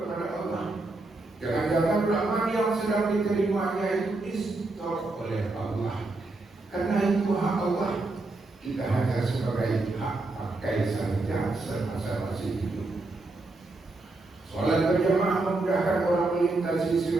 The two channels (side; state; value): left; quieter; 3.1 dB